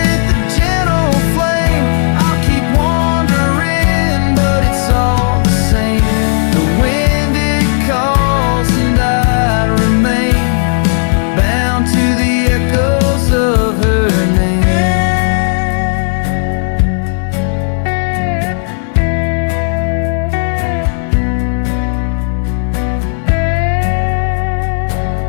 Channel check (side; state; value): right; silent; digital silence